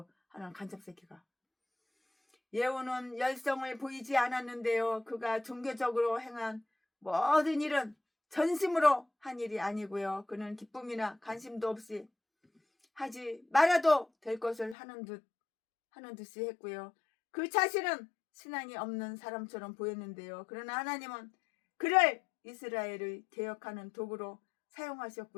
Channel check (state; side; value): drops out; right; at 14.8 s